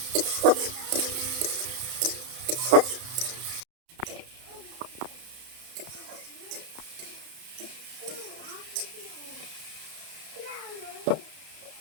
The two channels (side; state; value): left; late; 31 ms